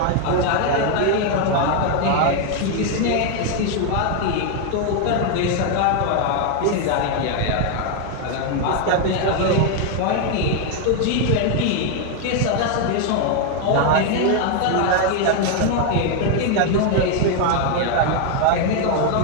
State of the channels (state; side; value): different; both; correlation 0.01